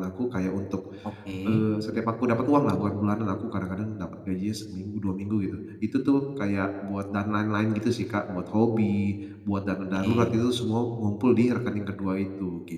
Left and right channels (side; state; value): both; identical; correlation 1.00